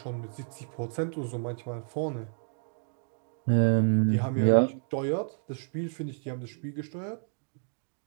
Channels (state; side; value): silent; left; 57 dB below the other